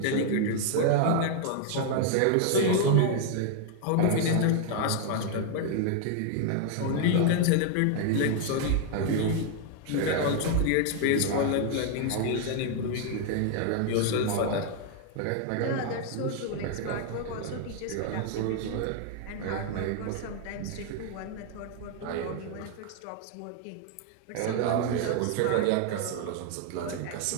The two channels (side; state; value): both; different; correlation 0.00